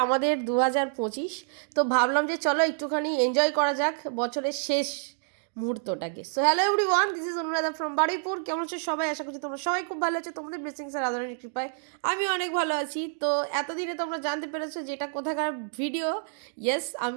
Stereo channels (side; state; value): left; silent; digital silence